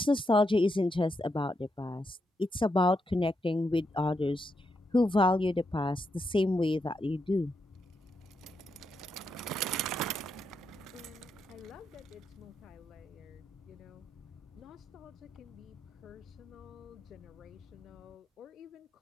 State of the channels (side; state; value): both; normal; correlation 0.82